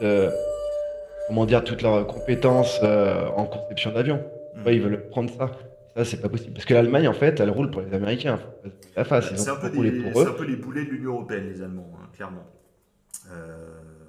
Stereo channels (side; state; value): both; identical; correlation 1.00